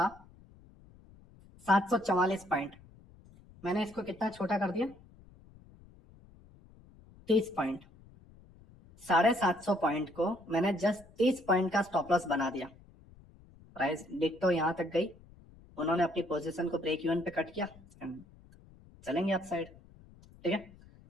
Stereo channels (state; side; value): noise; left; rumble, 24 dB below the sound